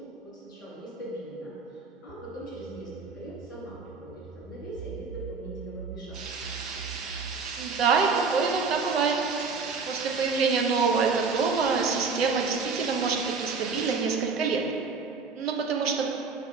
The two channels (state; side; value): quieter; left; 4.7 dB